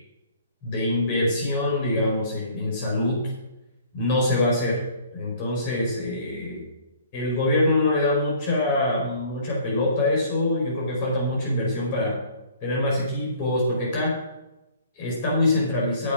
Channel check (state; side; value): inverted; both; correlation -0.54